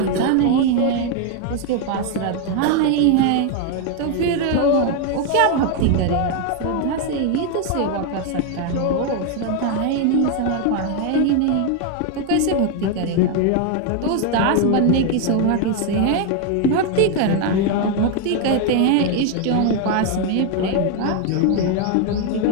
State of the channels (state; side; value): different; both; correlation 0.01